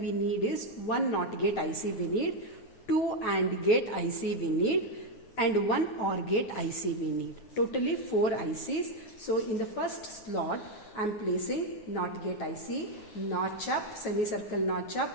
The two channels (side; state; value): right; late; 9.1 ms